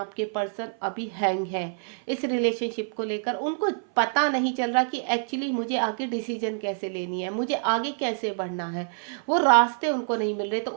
पर्सन अभी हैंग है इस रिलेशनशिप को लेकर। उनको पता नहीं चल रहा कि एक्चुअली मुझे आगे डिसीजन कैसे लेनी है, मुझे आगे कैसे बढ़ना है, वो रास्ते उनको नहीं मिल रहे। तो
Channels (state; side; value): silent; left; 56 dB below the other